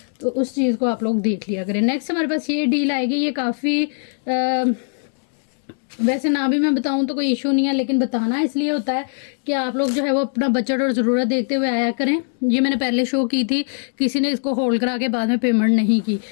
तो उस चीज़ को आप लोग देख लिया करें। नेक्स्ट हमारे पास ये डील आएगी। ये काफ़ी वैसे ना भी मैं बताऊं तो कोई इशू नहीं है, लेकिन बताना इसलिए होता है कि आप लोग जो है वो अपना बजट और ज़रूरत देखते हुए आया करें। ये मैंने पहले शो की थी, किसी ने इसको होल्ड करा के बाद में पेमेंट नहीं की,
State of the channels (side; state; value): right; silent; digital silence